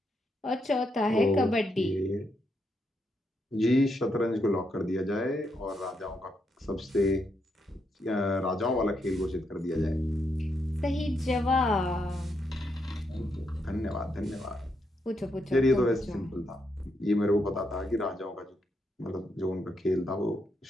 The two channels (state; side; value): normal; both; correlation 0.80